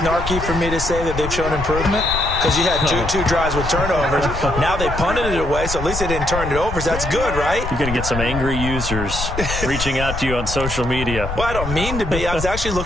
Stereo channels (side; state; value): left; noise; rumble, 6 dB below the sound